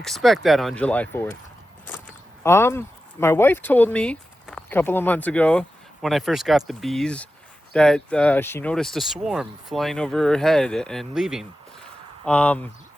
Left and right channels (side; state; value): both; normal; correlation 0.92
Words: that on July 4th. My wife told me a couple of months ago when I first got the bees that she noticed a swarm flying over her head and leaving. I